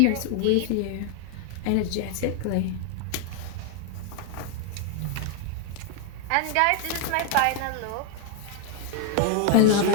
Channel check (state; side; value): different; both; correlation 0.01